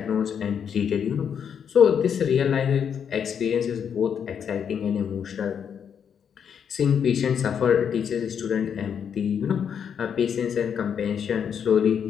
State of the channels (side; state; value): right; quieter; 7.7 dB